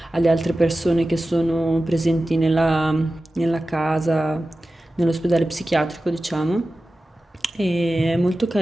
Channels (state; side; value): normal; both; correlation 0.95